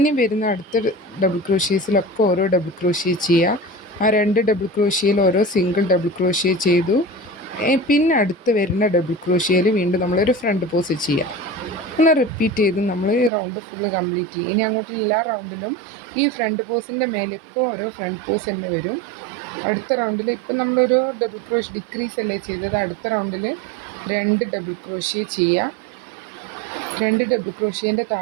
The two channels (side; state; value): left; drops out; at 13.3 s